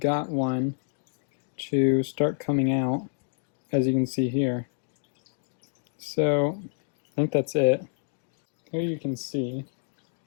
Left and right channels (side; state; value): right; silent; digital silence